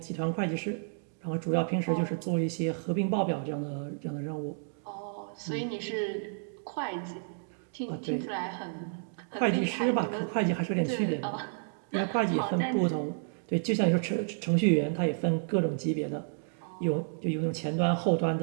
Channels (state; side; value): silent; left; digital silence